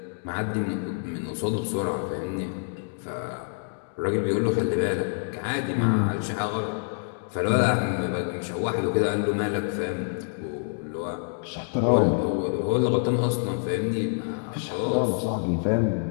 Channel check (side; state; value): right; silent; digital silence